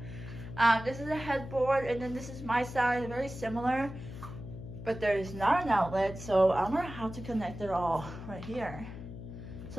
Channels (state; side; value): noise; left; hum, 11 dB below the sound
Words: This is a headboard, and then this is my side, very similar, but there is not an outlet, so I'm gonna have to connect it all right here.